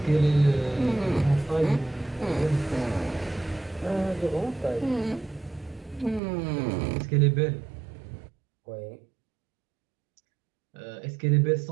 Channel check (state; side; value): drops out; left; at 6.2 s